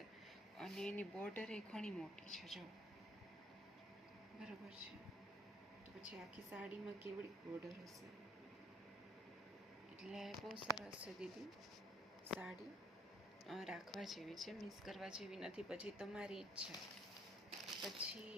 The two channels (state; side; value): normal; both; correlation 0.65